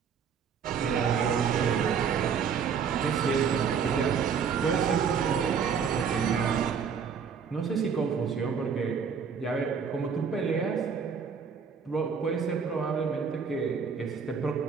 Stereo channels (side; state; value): left; quieter; 6.6 dB